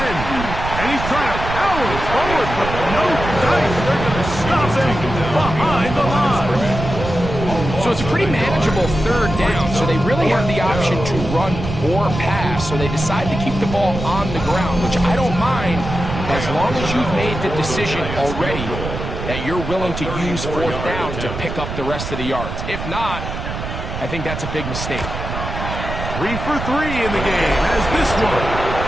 And he's trying to power forward, but no dice. They're going to stop him behind the line. So it's a pretty manageable 3rd down, so they really have the option to run or pass. So they decide to keep the ball on the ground, which I don't mind as long as you've made the decision already that you're willing to use fourth down to pick up the rest of the yards. If not, I think that's a big mistake. 3 for 3 in the game, as this one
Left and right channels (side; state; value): right; noise; rumble, 6 dB below the sound